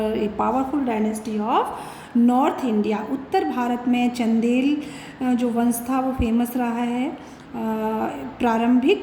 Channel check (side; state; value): both; identical; correlation 1.00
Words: a powerful dynasty of north India. उत्तर भारत में चंदेल जो वंश था वो फेमस रहा है